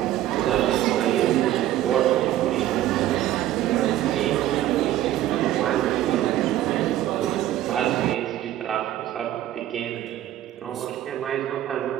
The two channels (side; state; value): left; quieter; 13.2 dB